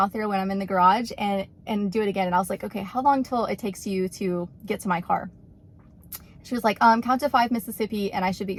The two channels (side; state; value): both; identical; correlation 1.00